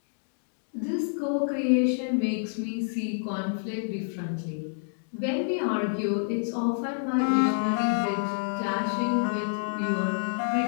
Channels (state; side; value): silent; right; digital silence